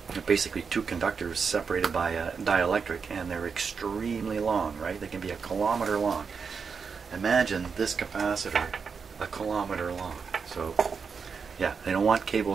basically two conductors separated by a dielectric, and they're extremely long, right? They can be a kilometer long. Imagine this capacitor a kilometer long. So yeah, they don't want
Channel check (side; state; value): left; quieter; 5.7 dB